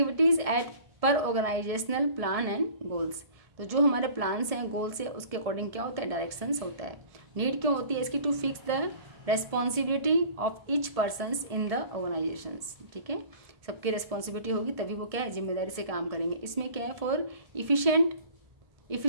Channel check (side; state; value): left; late; 1.7 ms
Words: एट पर ऑर्गेनाइजेशनल प्लान एंड गोल्स, तो जो हमारे प्लान्स हैं, गोल्स है, उसके अकॉर्डिंग क्या होता है, डायरेक्शंस होता है। नीड क्यों होती है इसकी, to fix the responsibility of each persons in the organisations, ठीक है। सबकी रेस्पॉन्सिबिलिटी होगी तभी वो क्या है, जिम्मेदारी से काम करेंगे। इसमें क्या है, for